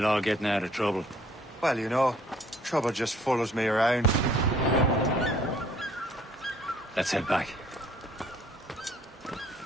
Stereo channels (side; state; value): both; normal; correlation 0.60